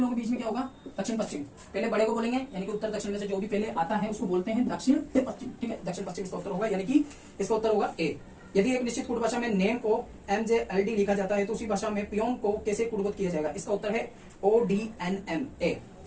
के बीच में क्या होगा? दक्षिण पश्चिम, पहले बड़े को बोलेंगे यानी कि उत्तर दक्षिण में से जो भी पहले आता है उसको बोलते हैं दक्षिण पश्चिम, ठीक है। दक्षिण पश्चिम इसका उत्तर होगा, यानी कि इसका उत्तर होगा ए। यदि एक निश्चित कूट भाषा में नेम को MJLD लिखा जाता है तो उसी भाषा में पियोन को कैसे कूटबद्ध किया जाएगा? इसका उत्तर है ODNMA,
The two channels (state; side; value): identical; both; correlation 1.00